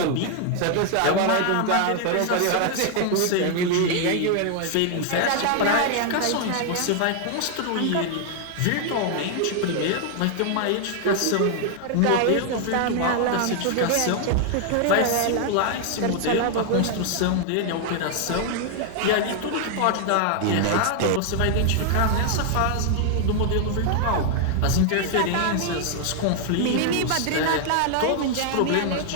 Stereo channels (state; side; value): different; both; correlation 0.00